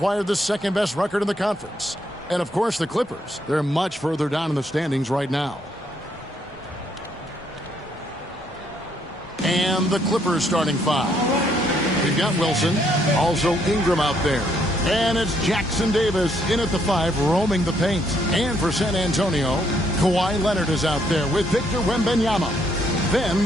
the second-best record in the conference. And, of course, the Clippers. They're much further down in the standings right now. And the Clippers starting 5. We've got Wilson, also Ingram out there. And it's Jackson Davis in at the 5, roaming the paint. And for San Antonio, Kawhi Leonard is out there with Victor Wembanyama. Then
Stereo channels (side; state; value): both; normal; correlation 0.71